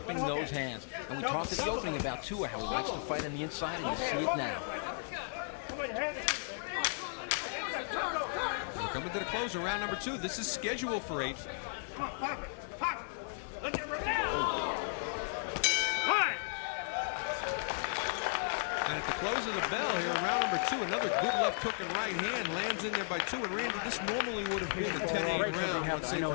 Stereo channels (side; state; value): right; silent; digital silence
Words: those hands. And we talked at the opening about Tua, how he likes to fight on the inside, and you see it now. coming to the close of round number 2. This is scheduled for 8. And at the close of the bell here in round number 2, another good left hook and right hand lands in there by Tua. And Randy, this normally would have been a 10-8 round, let's say,